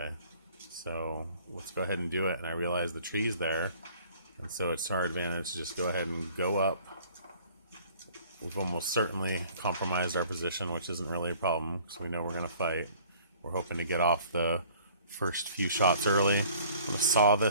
So let's go ahead and do it. And I realize the tree's there. And so it's our advantage to just go ahead and go up. We've almost certainly compromised our position, which isn't really a problem, because we know we're going to fight. We're hoping to get off the first few shots early. I'm going to saw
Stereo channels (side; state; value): both; inverted; correlation -0.54